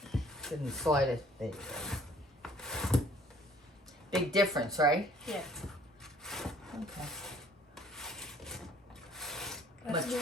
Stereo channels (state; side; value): normal; both; correlation 0.57